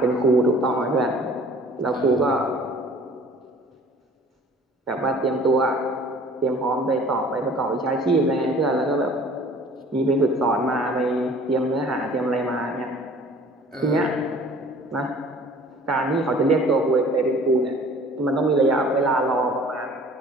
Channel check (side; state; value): both; normal; correlation 0.50